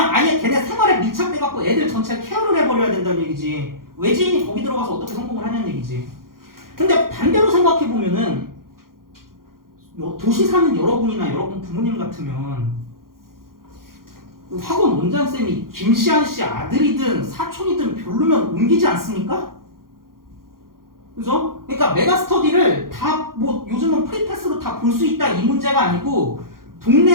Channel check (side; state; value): left; late; 0.92 ms